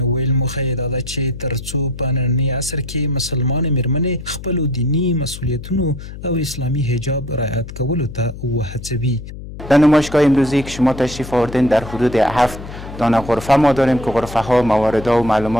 ویل موخه یې دا ده چې تر څو په ننني عصر کې مسلمان میرمنې خپلو دینی مسئولیتونو او اسلامی حجاب رعایت کولو ته وهڅوي. در نمایشگاه امروزی که شما تشریف آوردین در حدود 7 دانه غرفه ما داریم که غرفه ها مواردها و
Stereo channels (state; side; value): noise; left; hum, 12 dB below the sound